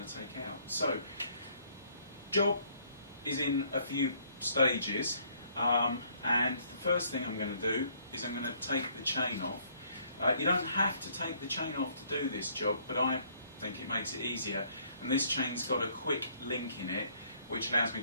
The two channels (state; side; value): inverted; both; correlation -0.64